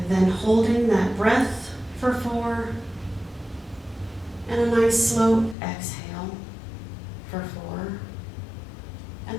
then holding that breath for 4, and a nice, slow exhale for 4, and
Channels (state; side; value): drops out; right; at 5.6 s